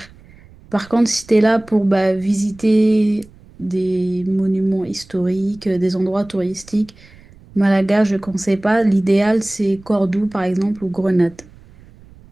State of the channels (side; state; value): right; noise; rumble, 24 dB below the sound